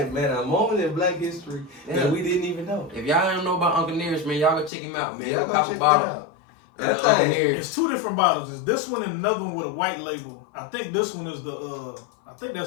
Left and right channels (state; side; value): drops out; right; at 4.7 s